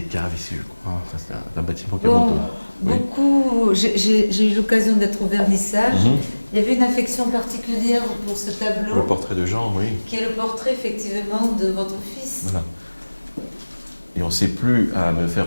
caves ici, je crois. Enfin, c'est un bâtiment qui remonte. Beaucoup. J'ai eu l'occasion d'être au vernissage. Il y avait une affection particulière pour ce tableau. Le portrait de Jean, oui. Qui est le portrait, effectivement, de votre fils. Voilà. Et on ne sait plus à me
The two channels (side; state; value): both; inverted; correlation -1.00